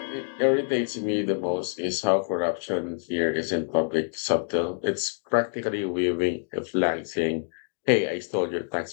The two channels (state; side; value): silent; right; digital silence